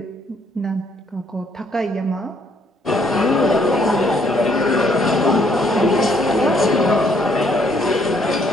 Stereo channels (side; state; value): both; normal; correlation 0.67